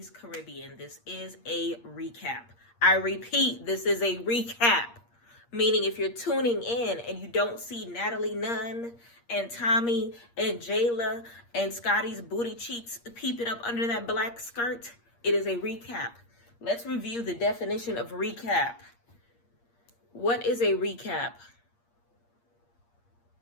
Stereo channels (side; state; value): right; late; 8.5 ms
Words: Caribbean. This is a recap. I repeat, this is a recap. Meaning, if you're tuning in and you don't see Natalie Nunn and Tommy and Jayla and Scotty's booty cheeks peeping up under that black skirt, it is a recap. Let's review the definition of recap. What is a recap?